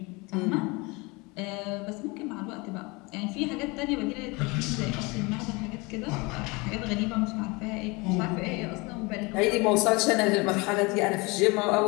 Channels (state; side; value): quieter; right; 26.1 dB